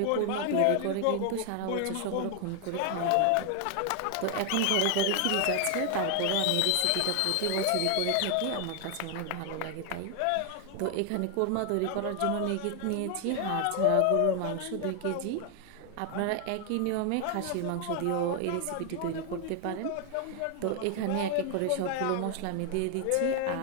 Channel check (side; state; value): both; different; correlation 0.00